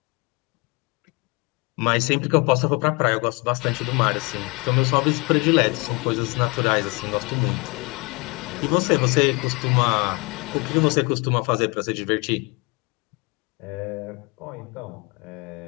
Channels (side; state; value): right; quieter; 28.6 dB